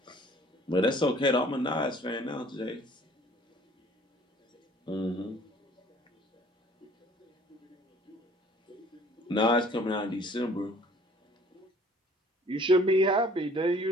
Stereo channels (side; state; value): both; normal; correlation 0.54